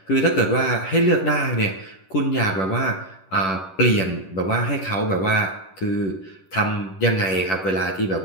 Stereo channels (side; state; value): right; late; 11 ms